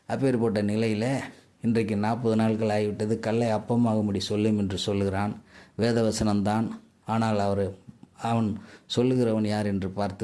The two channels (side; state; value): both; identical; correlation 1.00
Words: அப்பேற்பட்ட நிலையில் இன்றைக்கு 40 நாட்கள் ஆகிவிட்டது, கல்லை அப்பமாகும்படி சொல்லும் என்று சொல்லுகிறான். வேதவசனம்தான். ஆனால் அவன் சொல்லுகிறவன் யார் என்று